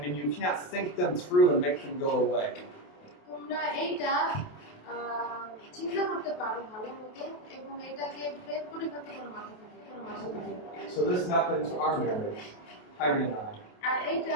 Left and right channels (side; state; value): right; late; 28 ms